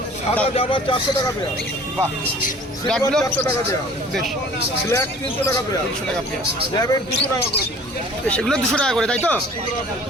সাদা জাবা 400 টাকা পেয়ার। বাহ, সিলভার ব্ল্যাকগুলো 400 টাকা পেয়ার। বেশ, ব্ল্যাক 300 টাকা পেয়ার। 300 টাকা পেয়ার। ল্যাবের 200 টাকা করে। সেগুলো 200 টাকা করে, তাই তো?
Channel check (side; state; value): both; normal; correlation 0.48